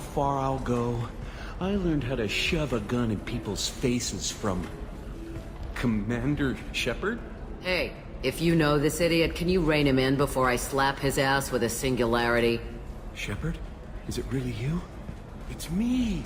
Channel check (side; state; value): both; identical; correlation 1.00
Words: I'll go? I learned how to shove a gun in people's faces from Commander Shepard. Hey, if you know this idiot, can you rein him in before I slap his ass with a singularity? Shepard? Is it really you? It's me,